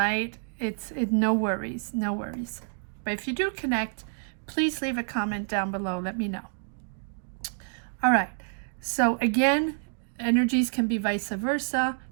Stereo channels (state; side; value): silent; left; 59 dB below the other